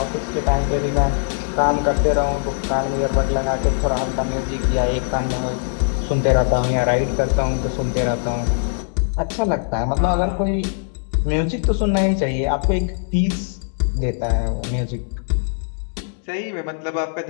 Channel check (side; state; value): right; silent; digital silence